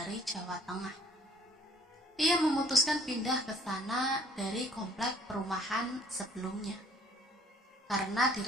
Jawa Tengah. Ia memutuskan pindah ke sana dari komplek perumahan sebelumnya karena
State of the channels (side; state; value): both; normal; correlation 0.58